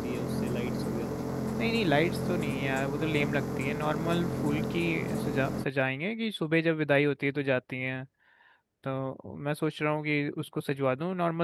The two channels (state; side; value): identical; both; correlation 1.00